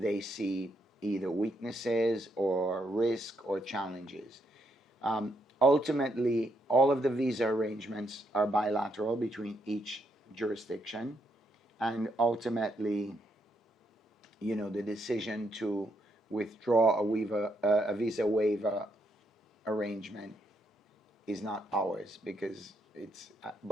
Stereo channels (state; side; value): normal; both; correlation 0.76